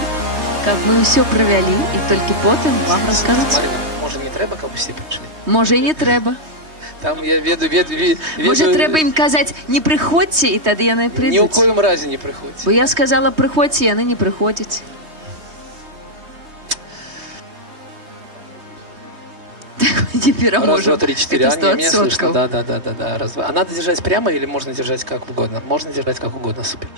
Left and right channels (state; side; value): late; left; 3.2 ms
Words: каб мы ўсё правялі і толькі потым вам раскажуць. Марина, може не треба, каб усе прийшли? Можа, і не трэба. Там я веду... Можа, трэба ім казаць, не прыходзьце, і тады яны Ні ў прыйдуць. коім разе не прыходзь. Бо я сказала, прыходзьце, яны не прыходзяць. Не пераможем. Раз, два, три, четыре. Это А, не, меня 100%. слышно. Да. Раз, два. А надо держать прямо или можно держать как угодно? Можно держать как угодно, супер.